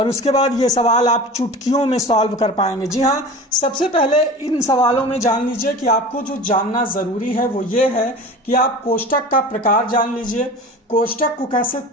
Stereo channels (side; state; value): both; normal; correlation 0.36